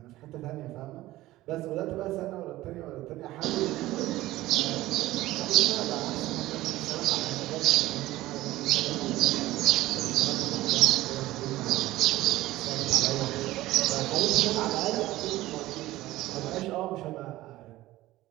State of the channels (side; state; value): left; quieter; 16.8 dB